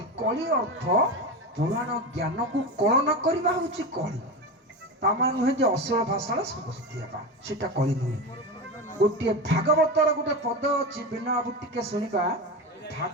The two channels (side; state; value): both; normal; correlation 0.21